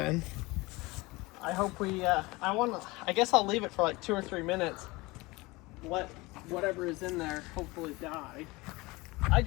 I hope I guess I'll leave it for like 2 or 3 minutes. Let whatever is in there hopefully die. I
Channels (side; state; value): right; quieter; 22.7 dB